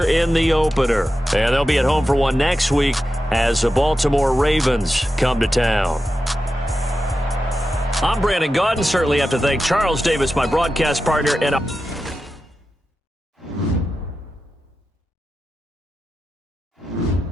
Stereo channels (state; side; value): normal; both; correlation 0.91